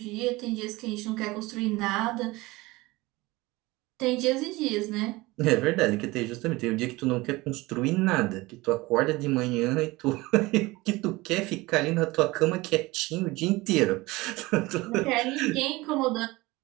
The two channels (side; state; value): left; quieter; 21.2 dB